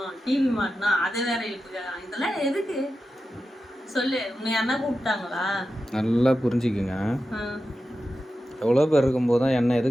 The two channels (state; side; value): normal; both; correlation 0.91